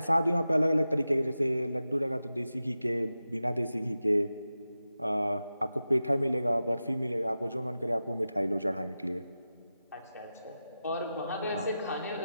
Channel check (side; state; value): both; inverted; correlation -0.92